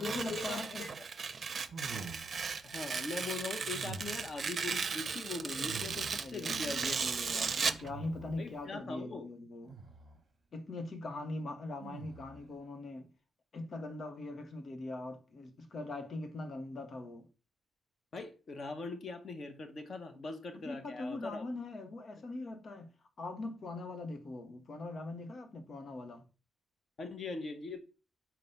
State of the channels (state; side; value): normal; both; correlation 0.79